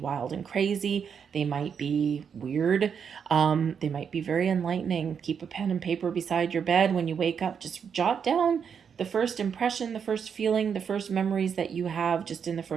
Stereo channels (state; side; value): quieter; left; 7.1 dB